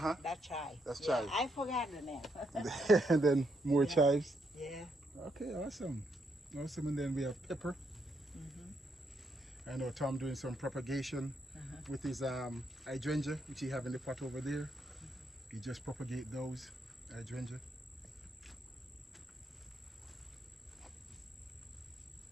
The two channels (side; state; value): both; normal; correlation 0.77